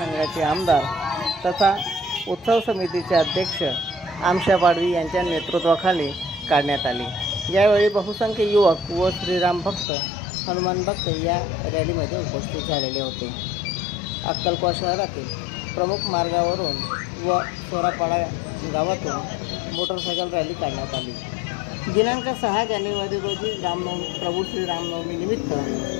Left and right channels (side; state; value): right; drops out; at 9.9 s